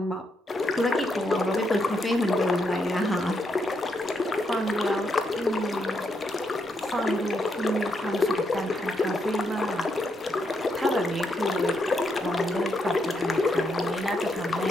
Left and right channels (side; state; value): both; normal; correlation 0.79